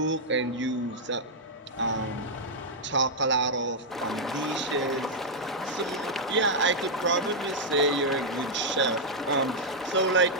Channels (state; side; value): normal; both; correlation -0.04